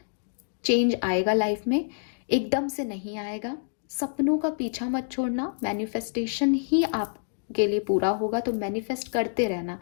चेंज आएगा लाइफ में, एकदम से नहीं आएगा। सपनों का पीछा मत छोड़ना, मैनिफेस्टेशन ही आप के लिए पूरा होगा, तो मैनिफेस्ट करते रहना।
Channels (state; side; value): silent; right; digital silence